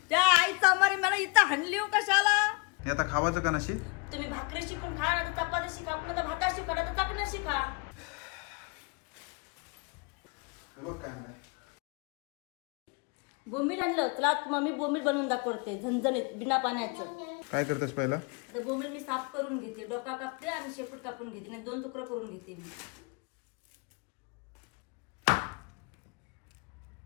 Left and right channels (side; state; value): right; quieter; 31.0 dB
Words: त्या आईचा मारी मला इथं हाणली कशाला. हे आता खावाचं का नशी. तुम्ही भाकरी शिकून खा ना तर चपाती शिका पुन्हा तर भाता शिका ना तर चपण्या शिका. बोंबील आणलं चला मम्मी बोंबील बनवून दाखवते झणझणीत बिना पाण्याचं. काय करतेस पहिला. आता बोंबील मी साफ करून घेते. डोका कापते आणि शेपूट कापून घेते नाही 2 तुकडे करून घेते मी.